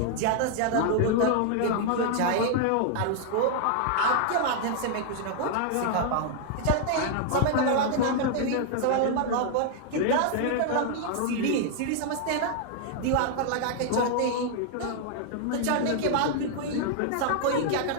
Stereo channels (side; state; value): both; different; correlation 0.00